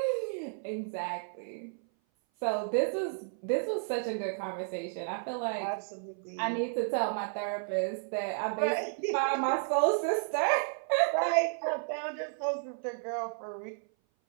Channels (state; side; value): silent; left; 56 dB below the other